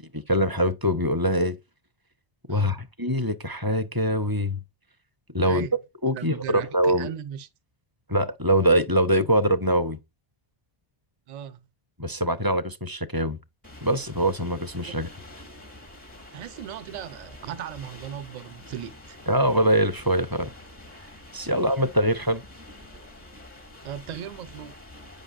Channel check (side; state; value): left; late; 1.0 ms